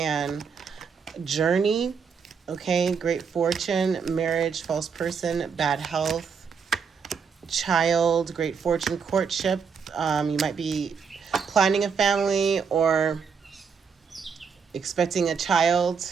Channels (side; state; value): left; quieter; 6.2 dB